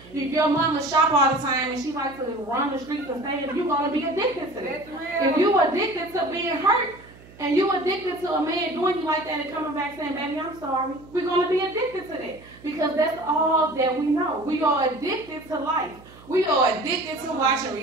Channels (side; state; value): right; noise; hum, 22 dB below the sound